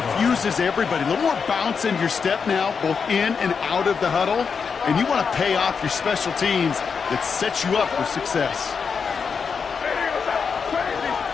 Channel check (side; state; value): right; quieter; 5.9 dB